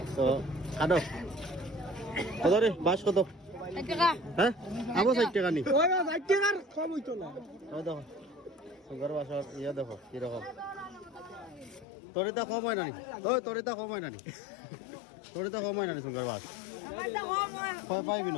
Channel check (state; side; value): drops out; right; at 11.9 s